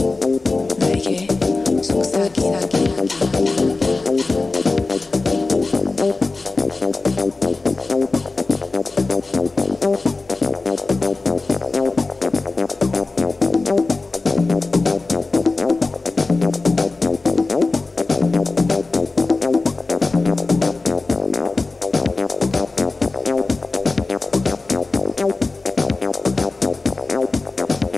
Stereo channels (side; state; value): right; quieter; 3.6 dB